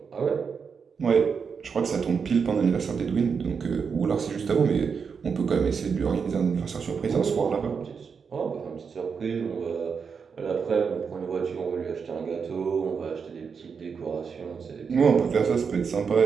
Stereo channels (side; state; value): left; quieter; 6.0 dB